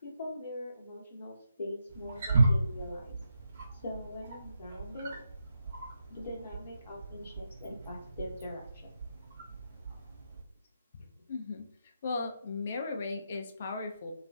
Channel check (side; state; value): both; inverted; correlation -0.84